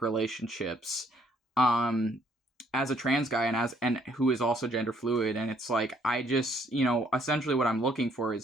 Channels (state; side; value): normal; both; correlation 0.66